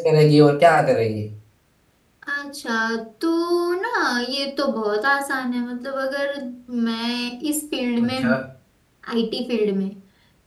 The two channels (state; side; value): identical; both; correlation 1.00